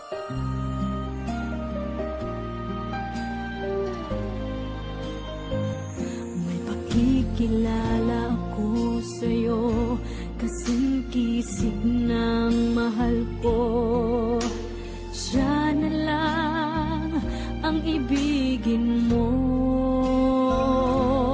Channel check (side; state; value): both; identical; correlation 1.00